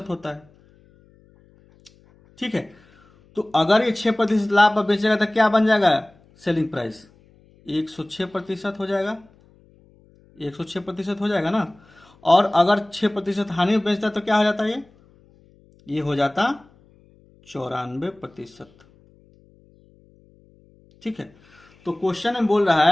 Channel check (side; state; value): left; noise; hum, 30 dB below the sound